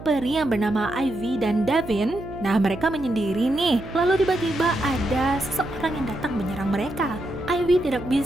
peri yang bernama Ivy dan Davin. Nah, mereka menyendiri nih. Lalu tiba-tiba ada seseorang yang datang menyerang mereka. Ivy tidak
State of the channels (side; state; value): right; noise; hum, 13 dB below the sound